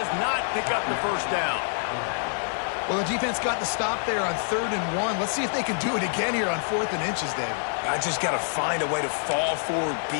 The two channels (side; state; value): right; silent; digital silence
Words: Well, the defense got the stop there on 3rd and 1. Let's see if they can do it again here on 4th and inches, Dave. I just got to find a way to fall forward, be